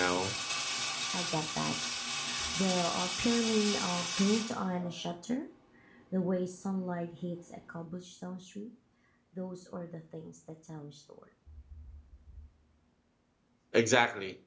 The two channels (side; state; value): both; identical; correlation 1.00